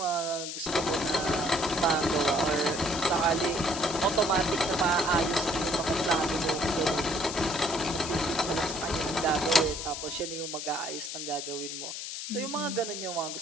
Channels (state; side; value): noise; left; hiss, 6 dB below the sound